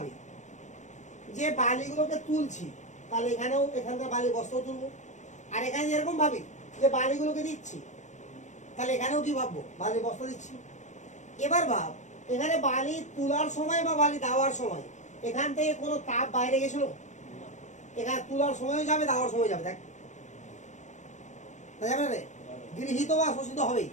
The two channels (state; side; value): late; right; 0.35 ms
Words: যে বালিগুলোকে তুলছি, তাহলে এখানেও এখানকার বালি বস্তাও তুলবো। আর এখানে এরকম ভাবি যে বালিগুলোকে দিচ্ছি, তাহলে এখানেও কি ভাববো, বালি বস্তা দিচ্ছি। এবার ভাব, এখানে বালি তোলার সময় বা বালি দেওয়ার সময় এখান থেকে কোনো তাপ বাইরে গেছিল? এখানে তোলার সময়ও যাবে, দেওয়ার সময় যাবে। দেখ, যাবে না রে? গৃহীত বা শোষিত হবেই,